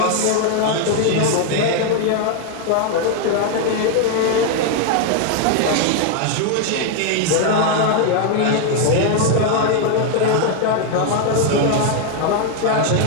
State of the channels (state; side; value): different; both; correlation 0.01